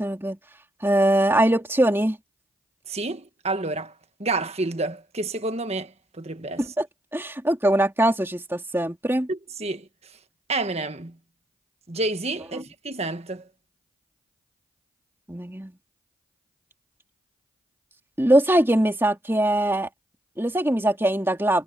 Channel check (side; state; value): both; normal; correlation 0.77